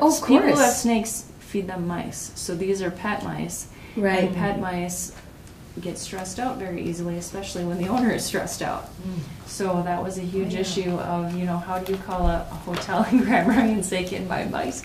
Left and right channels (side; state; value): both; identical; correlation 1.00